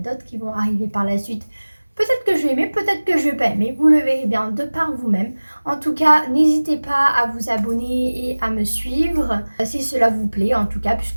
d'autres qui vont arriver par la suite. Peut-être que je vais aimer, peut-être que je vais pas aimer, vous le verrez bien de par vous-même. En tout cas, n'hésitez pas à vous abonner et à me suivre si cela vous plaît, en tout cas,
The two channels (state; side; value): inverted; both; correlation -1.00